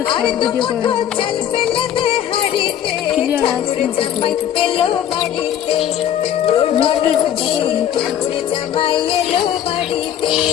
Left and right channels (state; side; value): quieter; right; 10.3 dB